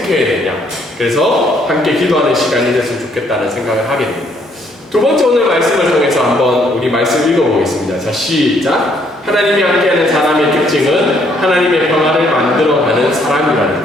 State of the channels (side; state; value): both; normal; correlation 0.68